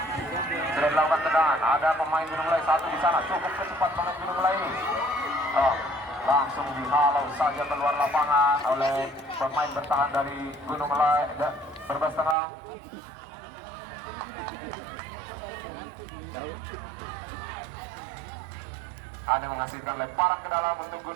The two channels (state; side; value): drops out; left; at 12.4 s